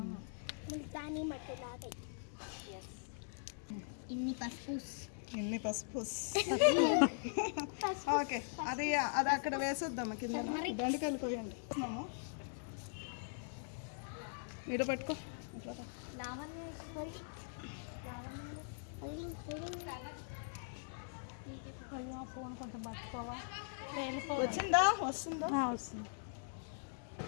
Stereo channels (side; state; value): right; silent; digital silence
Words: ఇన్ని పసుపు ఓకే. అది అక్కడ వేసేద్దాం కింద. బెండకాయలు కోయండి. మీరు పట్టుకో. ఫోన్ కొంచెం పట్టుకోవా? వచ్చిందా? వస్తుందా? వస్తుంది.